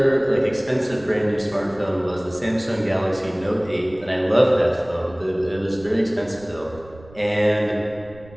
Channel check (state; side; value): noise; right; rumble, 21 dB below the sound